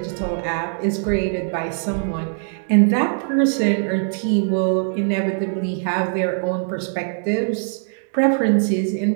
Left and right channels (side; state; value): left; silent; digital silence